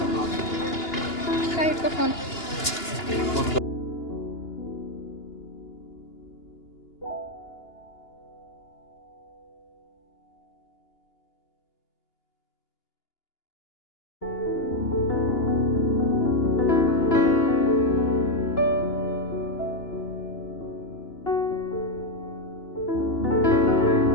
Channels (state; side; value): late; right; 2.9 ms